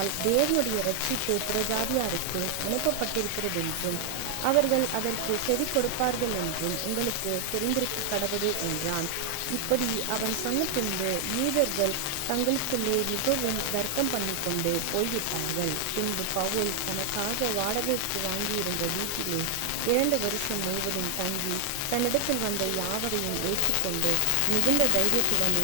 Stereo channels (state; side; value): different; both; correlation 0.00